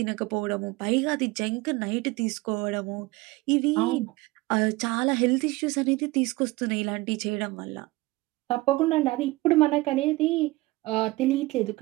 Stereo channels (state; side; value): quieter; left; 20.8 dB